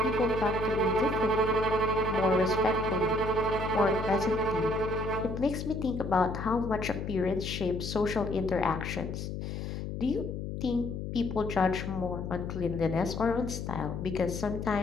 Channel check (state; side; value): noise; left; hum, 5 dB below the sound